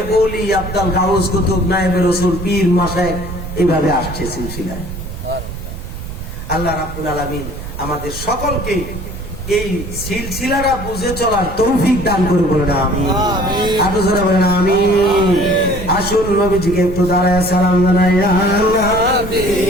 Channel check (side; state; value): right; noise; rumble, 9 dB below the sound